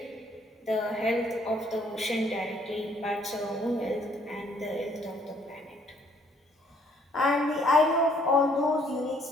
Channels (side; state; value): both; normal; correlation 0.65